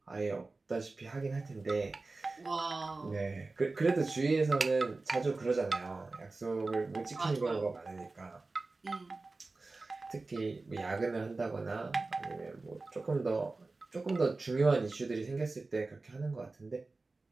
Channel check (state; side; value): quieter; left; 3.5 dB